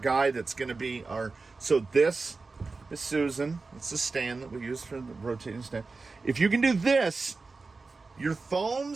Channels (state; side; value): quieter; left; 4.0 dB